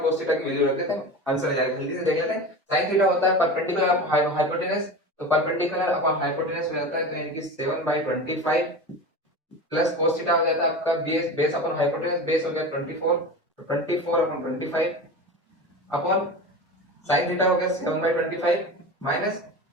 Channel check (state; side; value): normal; both; correlation 0.29